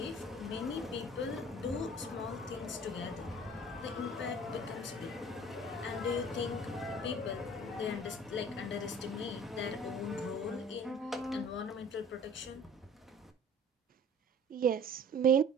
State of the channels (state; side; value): normal; both; correlation 0.47